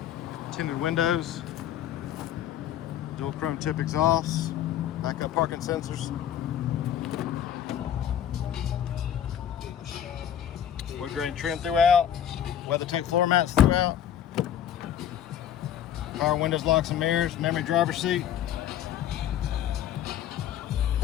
tinted windows, dual chrome tip exhausts, backup parking sensors, wood grain trim throughout, WeatherTech floor mats throughout, power windows, locks and mirrors, memory driver seat,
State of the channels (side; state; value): right; quieter; 10.2 dB